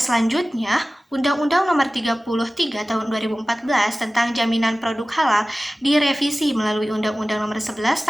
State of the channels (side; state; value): both; normal; correlation 0.97